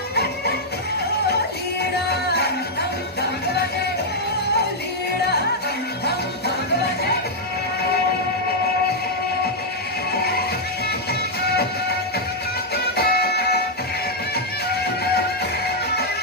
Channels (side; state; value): both; normal; correlation -0.04